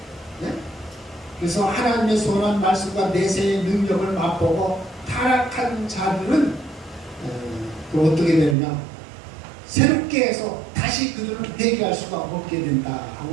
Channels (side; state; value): left; drops out; at 8.6 s